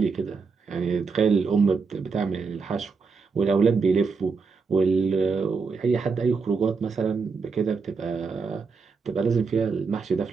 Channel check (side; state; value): left; quieter; 5.0 dB